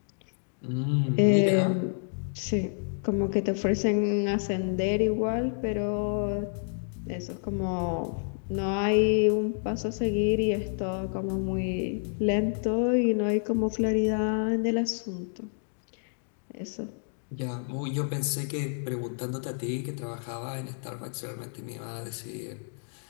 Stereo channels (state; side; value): silent; right; digital silence